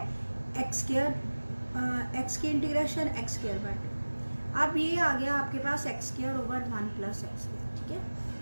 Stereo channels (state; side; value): inverted; both; correlation -1.00